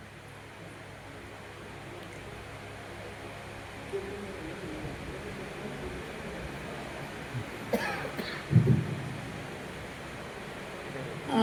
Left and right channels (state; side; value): identical; both; correlation 1.00